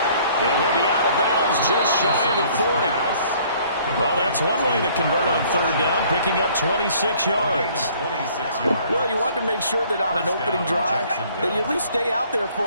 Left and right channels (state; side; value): inverted; both; correlation -0.58